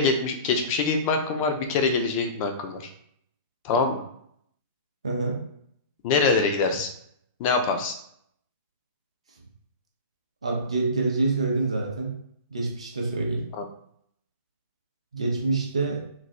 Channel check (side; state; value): both; inverted; correlation -0.35